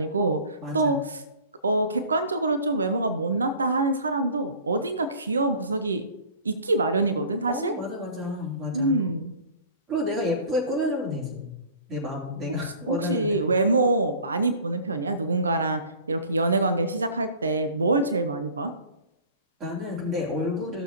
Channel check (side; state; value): both; inverted; correlation -0.44